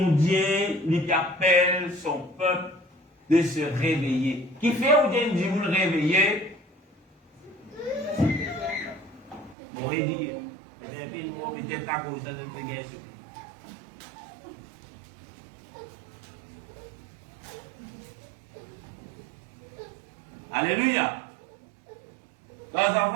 Dieu, il appelle son peuple de se réveiller. Qui fait ou bien dit vous le réveiller? Vous pourrez dire, peut-être à cause de notre guerre. Alléluia. Quand les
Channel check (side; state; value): left; drops out; at 9.6 s